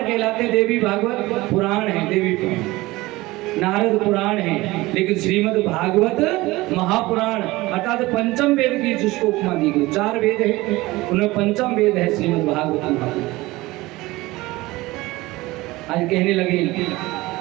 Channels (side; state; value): left; quieter; 20.0 dB